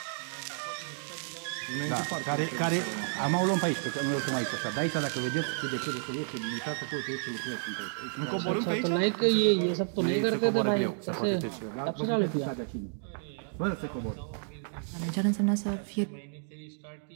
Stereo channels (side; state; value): left; silent; digital silence